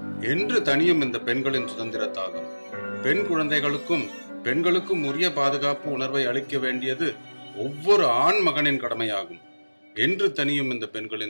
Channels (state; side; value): inverted; both; correlation -1.00